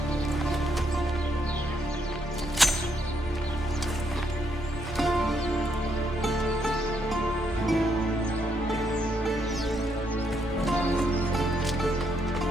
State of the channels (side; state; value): both; normal; correlation 0.75